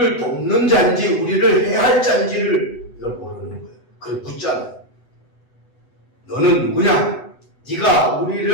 돕는 자인지 우리를 해할 자인지를 이걸 모르는 거예요. 그걸 묻잖아요. 너는 누구냐? 네가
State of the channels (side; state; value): right; late; 8.0 ms